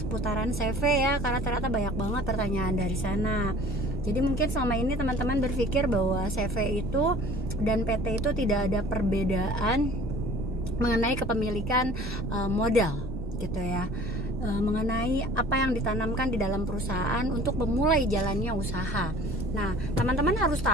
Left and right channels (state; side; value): normal; both; correlation 0.48